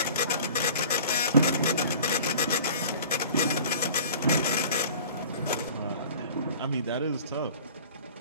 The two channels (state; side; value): inverted; both; correlation -0.45